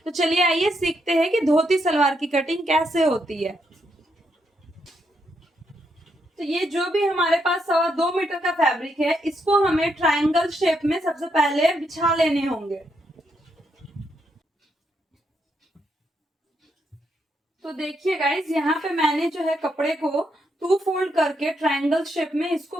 तो चलिए आइए सीखते हैं कि धोती सलवार की कटिंग कैसे होती है। तो ये जो भी हमारे पास 2.25 मीटर का फैब्रिक है, इसको हमें ट्रायंगल शेप में सबसे पहले बिछा लेने होंगे। तो देखिए गाइस, यहाँ पे मैंने जो है कपड़े को 2 फोल्ड करके ट्रायंगल शेप में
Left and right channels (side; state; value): both; normal; correlation 0.78